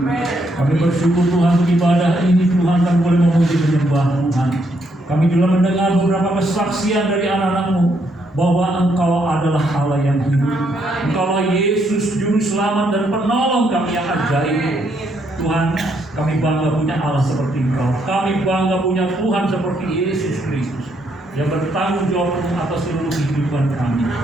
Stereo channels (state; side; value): normal; both; correlation 0.74